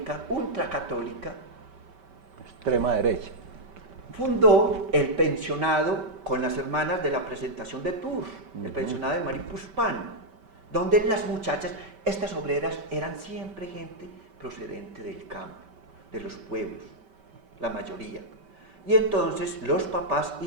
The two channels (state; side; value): late; left; 5.2 ms